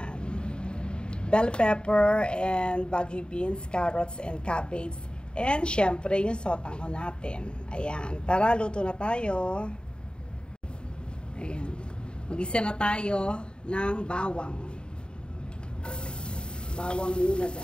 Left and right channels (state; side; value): late; right; 0.051 ms